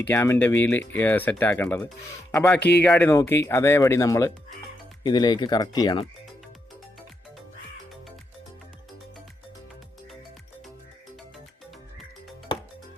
ക്യാമിൻ്റെ വീല് സെറ്റാക്കേണ്ടത്. അപ്പോൾ ആ കീ ഗാർഡ് നോക്കി അതേപടി നമ്മൾ ഇതിലേക്ക് കറക്റ്റ് ചെയ്യണം.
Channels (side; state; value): both; normal; correlation 0.82